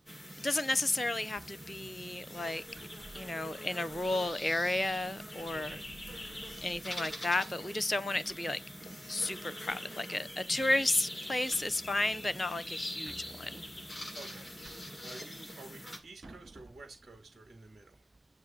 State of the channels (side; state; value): both; normal; correlation 0.94